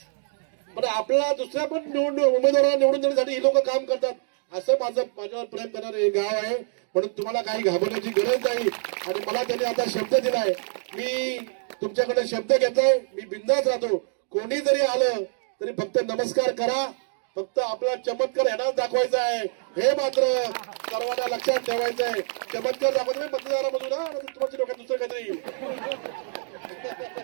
पण आपला दुसऱ्या पण उमेदवारांना निवडून देण्यासाठी ही लोक काम करतात. असं माझ्यावर प्रेम करणारं हे गाव आहे. म्हणून तुम्हाला काही घाबरण्याची गरज नाही. आणि मला त्यांनी आता शब्द दिलाय, मी तुमच्याकडे शब्द घेतोय, मी बिंदास राहतो. कोणी जरी आलं तरी फक्त नमस्कार करा, फक्त आपला चमत्कार यांनाच दाखवायचा आहे, हे मात्र सर्वांना लक्षात ठेवायचं आहे. चमत्कार दाखवतो मतदारामधून, तुमच्या डोक्यात दुसरं काहीतरी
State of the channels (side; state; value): left; silent; digital silence